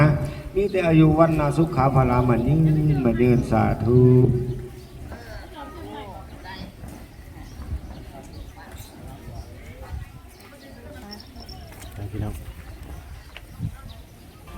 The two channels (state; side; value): identical; both; correlation 1.00